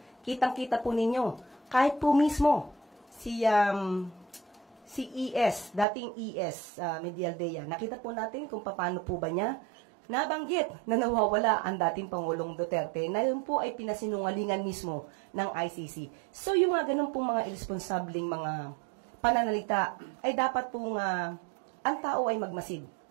Kitang-kita po ninyo, kahit po mismo si ES, dating ES, Medialdea, nakita po natin kung paano po ba niya nabanggit na nawawala ang dating Pangulong Duterte na yun po ay pinasinungalingan mismo ng ICC. So yung mga ganun pong mga irresponsabling mga pananalita ay dapat pong ang tao ay magmasid,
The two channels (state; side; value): drops out; left; at 5.9 s